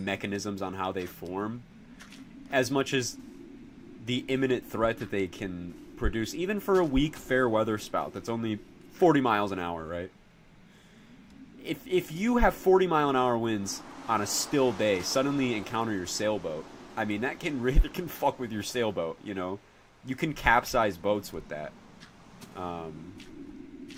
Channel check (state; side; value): identical; both; correlation 1.00